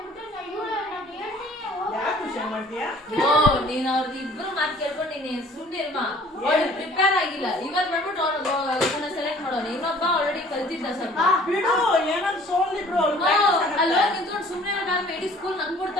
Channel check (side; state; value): both; normal; correlation 0.53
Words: ನೀನ್ ಅವ್ರದ್ದು ಇಬ್ರು ಮಾತು ಕೇಳ್ಕೊಂಡು ನೀನ್ ಸುಮ್ಮನಿರ್ಮಾ. ಅವಳು ಪ್ರಿಪೇರ್ ಆಗಿಲ್ಲ, ಇವತ್ ಮಾಡ್ಬಿಟ್ಟು ಅವ್ರನ್ನ ಸೆಲೆಕ್ಟ್ ಮಾಡೋಣ. ಇನ್ನೊಬ್ಬ ಆಲ್ರೆಡಿ ಕಲ್ತಿದ್ದ ಸ್ವಲ್ಪ. ಅಲ್ವಾ ನಿಂತ್ಕೊಂಡು ಸುಮ್ಮನೆ ಇರೋಕಾದ್ರೆ ಇಡೀ ಸ್ಕೂಲ್ ನಂಗ್